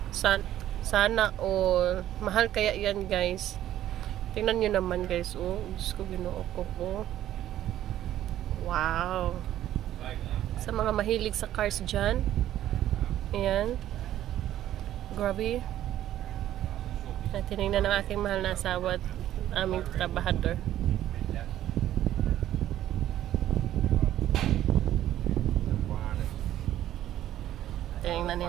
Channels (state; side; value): quieter; left; 12.5 dB